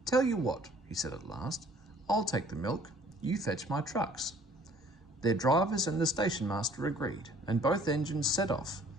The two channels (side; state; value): both; normal; correlation 0.56